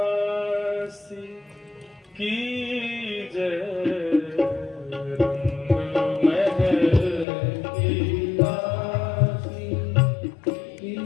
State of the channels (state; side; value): drops out; right; at 7.2 s